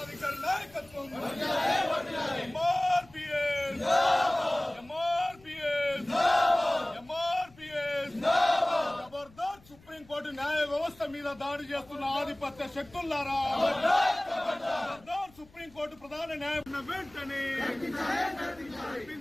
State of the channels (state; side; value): noise; left; rumble, 26 dB below the sound